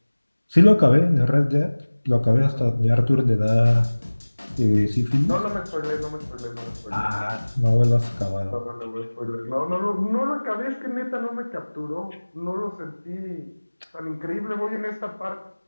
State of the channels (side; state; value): both; inverted; correlation -1.00